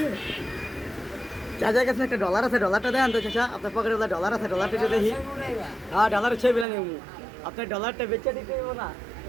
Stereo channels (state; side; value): drops out; left; at 6.7 s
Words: চাচার কাছে একটা ডলার আছে ডলারটা দেন তো চাচা আপনার পকেটে ডলার আছে ডলারটা যদি দেখি হ্যাঁ ডলার ছবি বিলা নেব আপনার ডলারটা বেচে দিতে হইব না